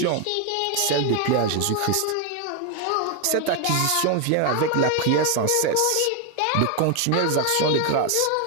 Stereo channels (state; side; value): different; both; correlation 0.01